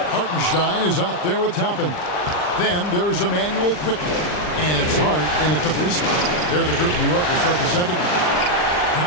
Hartenstein is out there with Toppin. Then there's Emmanuel Quickly. And it's Hart in at the 3 spot. They're the group. New York will start the second one.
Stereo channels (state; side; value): late; right; 39 ms